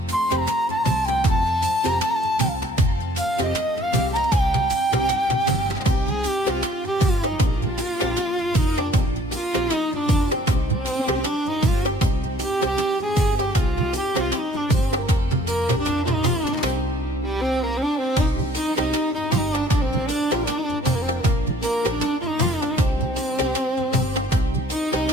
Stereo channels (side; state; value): both; normal; correlation 0.57